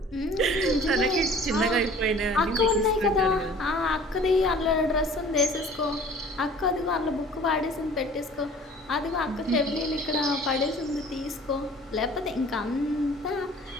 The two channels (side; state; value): both; normal; correlation 0.48